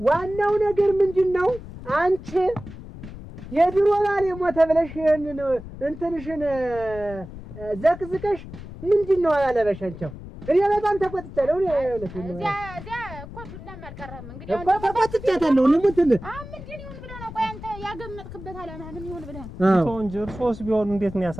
ዋናው ነገር ምንድነው አንቺ የድሮ ባል የሞተ ብለሽ እንትንሽን ዘቅዝቀሽ ምንድነው ያለበሻቸው እኔ በጣም ተቆጥቻለሁ እኔ እኮ ዱላም አልቀረህም እንግዲህ እኮ ተቆጥቻለሁ ለምን ምንድን ይሁን ብለህ ነው ቆይ አንተ ያገመጥክበት አላማ ምን ይሁን ብለህ ነው እንጂ እርሶስ ቢሆን እንዴት ነው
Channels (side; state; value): left; noise; rumble, 13 dB below the sound